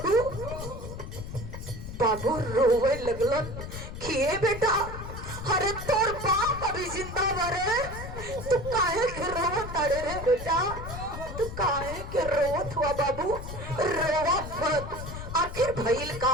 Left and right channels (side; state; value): left; noise; rumble, 9 dB below the sound